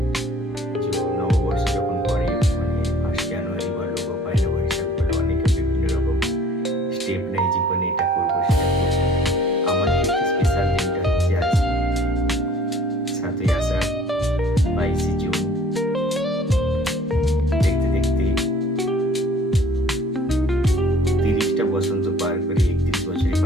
নববর্ষ যখন পড়ে, মানে 1 জানুয়ারি বলো বা 1 বৈশাখ বলো, অনেকে বিভিন্ন রকম স্টেপ নেয় জীবনে, এটা করবো সেটা করবো। আমার ক্ষেত্রে স্পেশাল দিনটা হচ্ছে আজকে 7ই আষাঢ় 22 জুন। দেখতে দেখতে 30টা বসন্ত পার করে 31 বছরে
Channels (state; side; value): normal; both; correlation 0.53